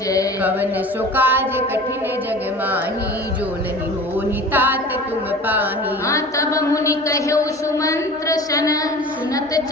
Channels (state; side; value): normal; both; correlation 0.39